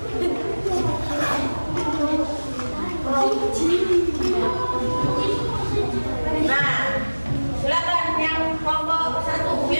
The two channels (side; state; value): both; inverted; correlation -1.00